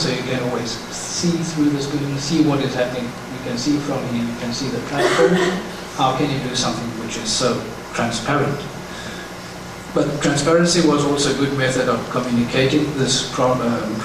you can always see through this building, see what is happening. You can see from here, you can see the platform. How can you do something which is so transparent? But transparency was also a good method of communicating this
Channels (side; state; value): both; identical; correlation 1.00